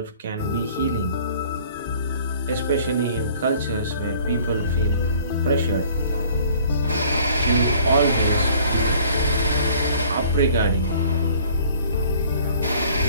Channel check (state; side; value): inverted; both; correlation -0.53